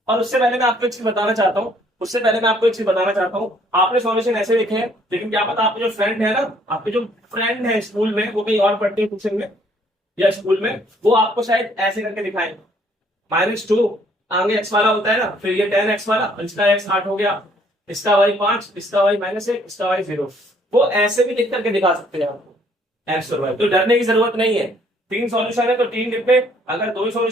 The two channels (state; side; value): normal; both; correlation 0.63